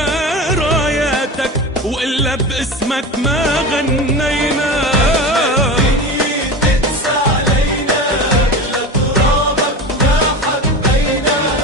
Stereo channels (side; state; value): both; normal; correlation 0.27